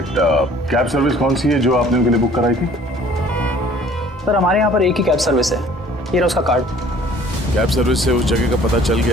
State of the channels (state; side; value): normal; both; correlation 0.53